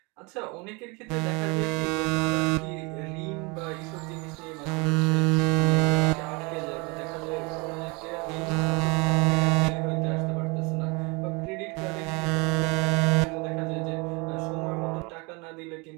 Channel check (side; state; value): left; quieter; 28.3 dB